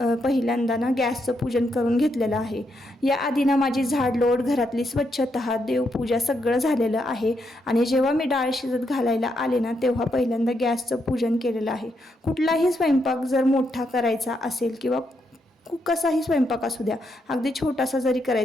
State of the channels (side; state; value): both; normal; correlation 0.80